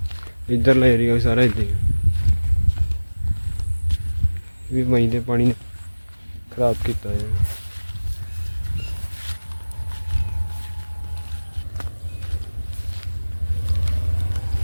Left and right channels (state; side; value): inverted; both; correlation -1.00